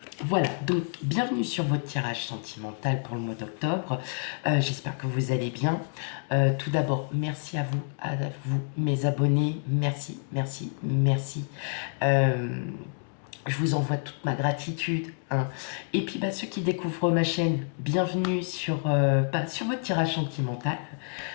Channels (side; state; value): right; silent; 57 dB below the other